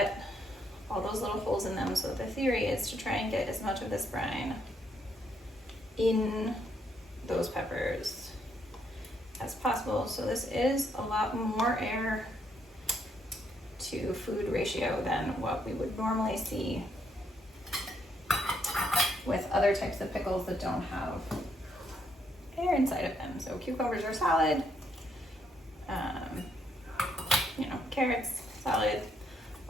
all those little holes in them. So the theory is to try and get as much of this brine in those peppers as possible. So this is a lot more air to food ratio than what we would normally see with other types of pickles that don't have air inside of them. So cucumbers are solid, you know, carrots, solid,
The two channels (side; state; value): both; normal; correlation 0.74